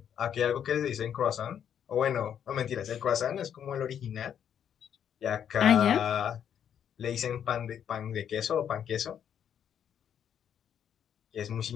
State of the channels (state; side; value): quieter; right; 8.9 dB